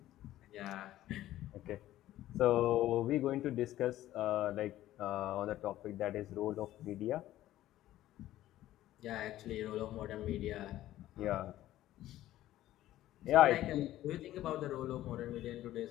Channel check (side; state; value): right; quieter; 14.2 dB